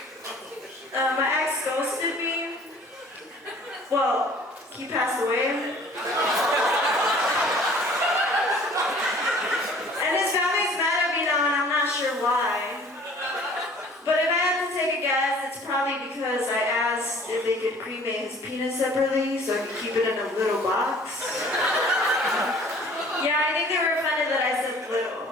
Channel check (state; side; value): normal; both; correlation 0.51